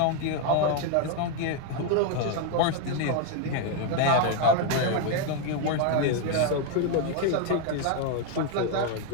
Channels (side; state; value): both; different; correlation 0.01